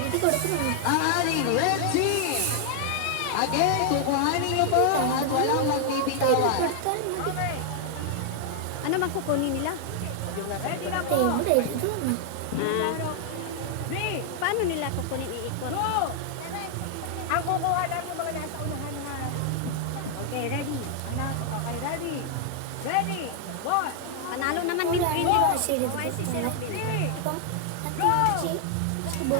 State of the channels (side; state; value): both; different; correlation 0.00